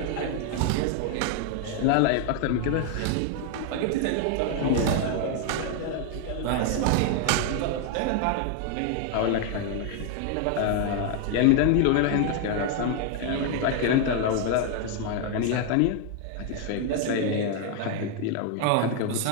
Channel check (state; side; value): different; both; correlation 0.00